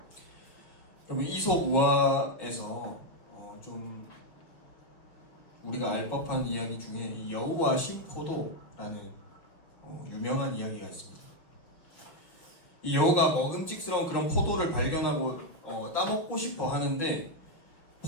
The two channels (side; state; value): right; late; 6.2 ms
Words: 여러분, 이솝우화에서 좀 우리가 알 법한 이야기 중에 이 여우와 신포도라는 유명한 이야기가 있습니다. 이 여우가 먹음직스러운 그런 포도를 발견하고 따먹고 싶어 하는데